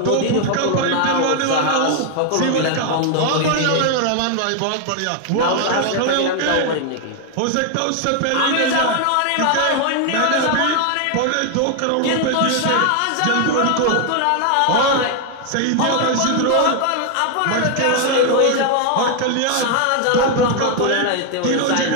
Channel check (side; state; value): both; different; correlation 0.01